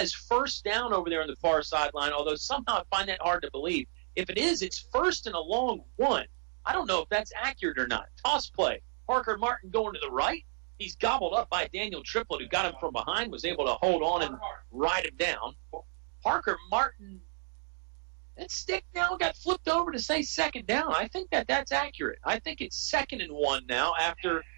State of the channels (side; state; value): left; silent; 57 dB below the other